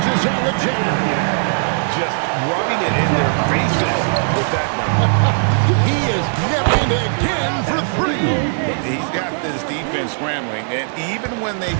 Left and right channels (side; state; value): left; silent; digital silence